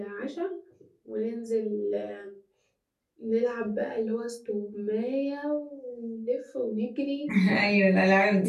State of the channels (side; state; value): both; identical; correlation 1.00